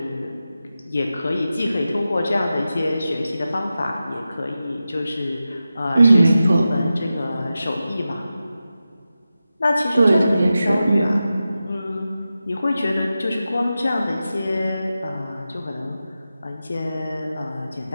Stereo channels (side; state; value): both; inverted; correlation -0.93